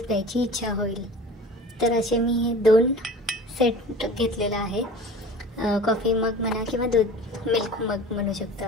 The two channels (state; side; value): normal; both; correlation 0.40